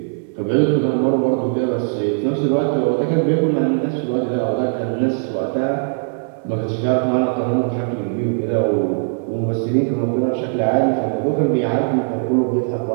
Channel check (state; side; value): silent; left; digital silence